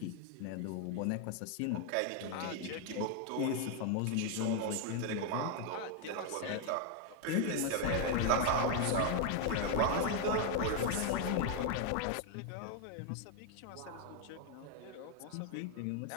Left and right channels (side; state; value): both; different; correlation 0.00